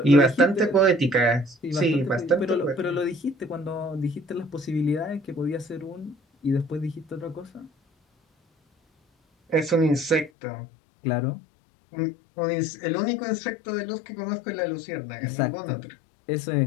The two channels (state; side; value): drops out; right; at 10.3 s